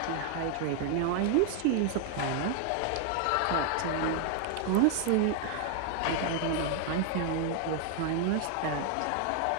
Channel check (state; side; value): different; both; correlation 0.00